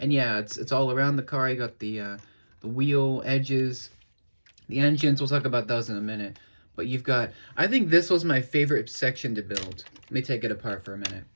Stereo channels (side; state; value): both; inverted; correlation -1.00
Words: yeah, it's all around the car. You got the wheel edges, the engines. We'll talk about those in a minute. But you've got, I think this was my favorite section to build. Let me take it apart for a minute.